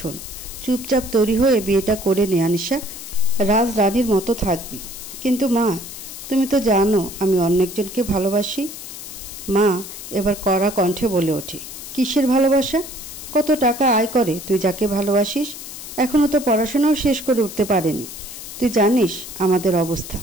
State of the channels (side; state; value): left; noise; hiss, 11 dB below the sound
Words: চুপচাপ তৈরি হয়ে বিয়েটা করে নে আনিশা, রাজরানীর মতো থাকবি। কিন্তু মা, তুমি তো জানো আমি অন্য একজনকে ভালোবাসি। মা এবার কড়া কণ্ঠে বলে ওঠে, কিসের ভালোবাসা? কত টাকা আয় করে তুই যাকে ভালোবাসিস? এখনও তো পড়াশোনাও শেষ করে উঠতে পারেনি। তুই জানিস আমাদের অবস্থা,